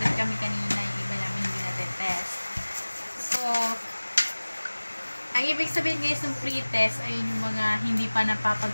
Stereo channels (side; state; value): both; inverted; correlation -1.00